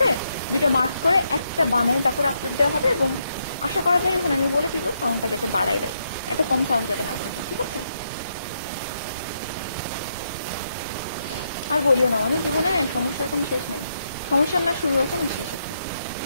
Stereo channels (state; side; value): inverted; both; correlation -0.79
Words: 2টা মার্ক করে একটা বানায় তারপর আপলোড দেওয়া হবে। এবং আশা করা যায় ওখানে আমি বলে দিব সাউন্ডটা যাতে বাড়াই দেয়, এত কম সাউন্ড যাতে না থাকে। ঠিক আছে, আর বলিও না, মানে জীবনে সমস্যার কোনো শেষ নেই, সমস্যার না শুরু আছে না শেষ আছে।